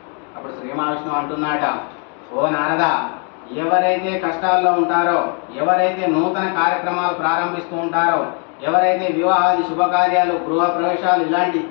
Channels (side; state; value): right; quieter; 38.4 dB